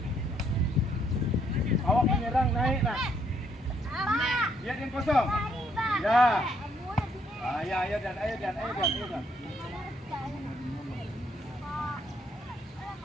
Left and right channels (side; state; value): both; normal; correlation 0.70